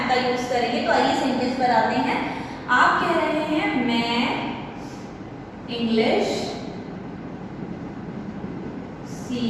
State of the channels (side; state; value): both; identical; correlation 1.00